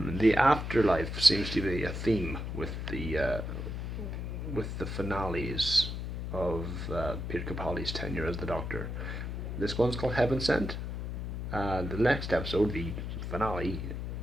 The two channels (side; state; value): left; noise; hum, 4 dB below the sound